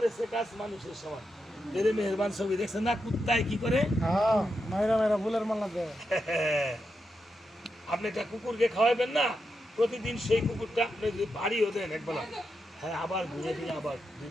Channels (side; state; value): both; normal; correlation 0.86